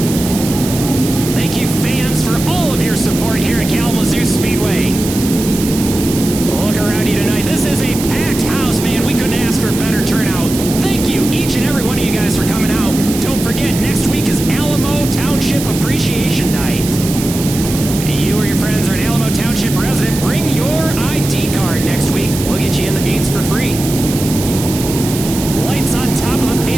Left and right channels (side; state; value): right; noise; hiss, 8 dB below the sound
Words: Support here at Kalamazoo Speedway. Look around you tonight. This is a packed house, man. We couldn't ask for a better turnout. Thank you, each and every one of you guys, for coming out. Don't forget, next week is Alamo Township Appreciation Night. You or your friends are an Alamo Township resident, bring your ID card next week. We'll get you in the gates for free. lights on top of the